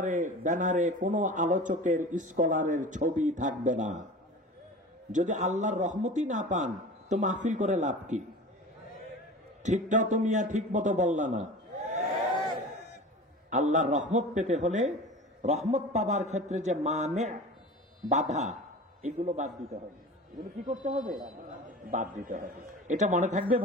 ব্যানারে কোন আলোচকের, স্কলারের ছবি থাকবে না। যদি আল্লাহর রহমতই না পান তো মাহফিল করে লাভ কি? ঠিকটাও তুমি ঠিক মতো বললা না। আল্লাহর রহমত পেতে হলে, রহমত পাবার ক্ষেত্রে যে মানে বাধা, এগুলো বাদ দিতে হবে। এগুলো কি করতে হবে? বাদ দিতে হবে। এটা মনে থাকবে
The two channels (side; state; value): both; normal; correlation 0.36